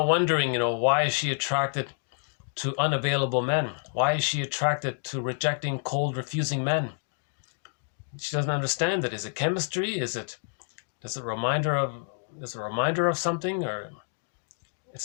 why is she attracted to unavailable men? Why is she attracted to rejecting, cold, refusing men? She doesn't understand it. Is it chemistry? Is it a reminder of something? Or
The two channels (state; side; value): silent; right; digital silence